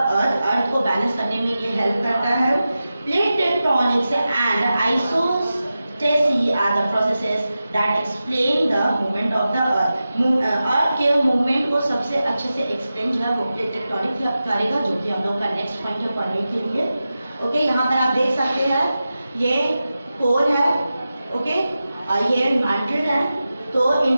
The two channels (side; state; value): both; inverted; correlation -0.93